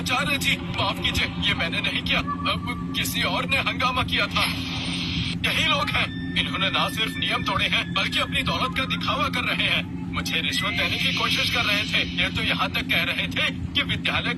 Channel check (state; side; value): identical; both; correlation 1.00